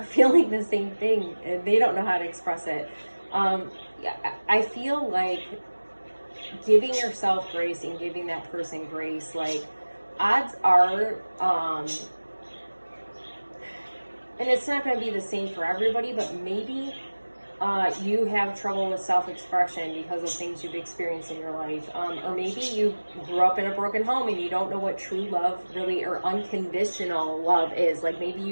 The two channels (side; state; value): both; inverted; correlation -1.00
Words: feeling the same thing and they don't know how to express it. I feel like giving yourself grace and giving that person grace, like odds are, and it's not going to be the same for everybody, but maybe you have trouble with self-expression because of things you've experienced in your life, or maybe you grew up in a broken home and you don't know what true love really, or unconditional love is. Like maybe